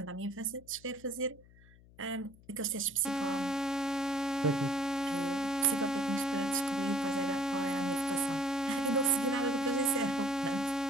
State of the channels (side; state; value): left; noise; hum, 24 dB below the sound